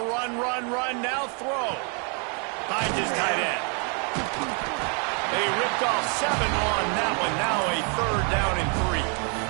now throw. Finds his tight end. They ripped off 7 on that one. Now a 3rd down and 3.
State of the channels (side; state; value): left; quieter; 37.7 dB